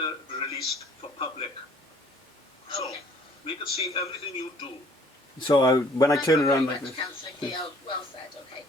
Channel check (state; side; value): normal; both; correlation 0.57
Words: be released for public. So, We can see everything you do. So when I turn around like like this. Councillor Keogh, well said, okay.